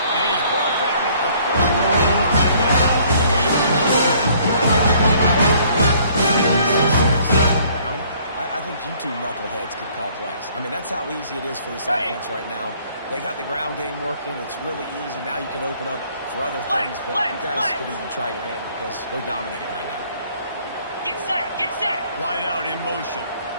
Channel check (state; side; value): inverted; both; correlation -0.60